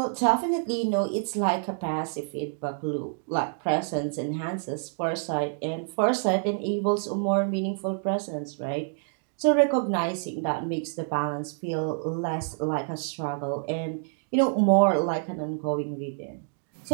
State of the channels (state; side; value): silent; left; digital silence